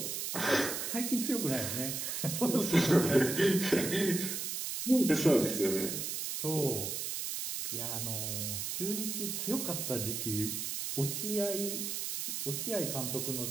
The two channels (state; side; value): noise; right; hiss, 3 dB below the sound